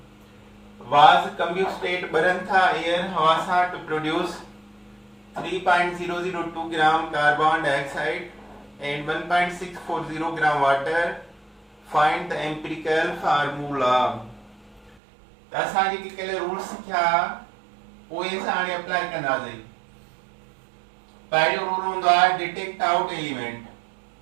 was combusted burn tha air हवा सां to produce 3.002 gram carbon dioxide and 1.640 gram water. Find the empirical formula. त असां जेके कल्ह रूल्स सिखिया उहे असां हाणे अप्लाई कंदासीं। पहिरियों रूल हूंदो आहे detect out element.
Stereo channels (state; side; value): drops out; left; at 15.0 s